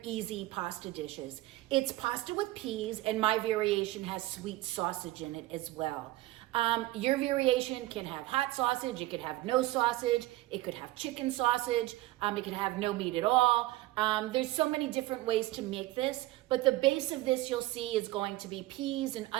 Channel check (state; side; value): quieter; left; 17.4 dB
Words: easy pasta dishes. It's pasta with peas, and my variation has sweet sausage in it as well. Your variation can have hot sausage, it could have no sausage, it could have chicken sausage, it could have no meat at all. There's so many different ways to make this, but the base of this you'll see is going to be peas and